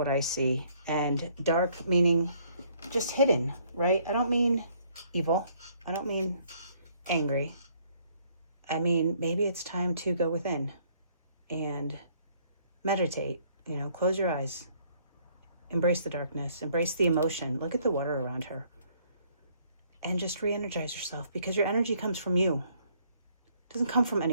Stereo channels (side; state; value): both; inverted; correlation -0.65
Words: I see. And dark meaning just hidden, right? I don't mean evil. I don't mean angry. I mean, maybe it's time to go within and meditate, you know, close your eyes, embrace the darkness, embrace the emotion. Look at the water around her and just re-energize yourself, because your energy comes from you. It doesn't come from